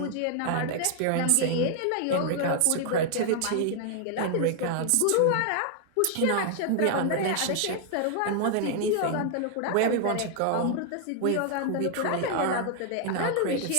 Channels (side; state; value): both; different; correlation 0.00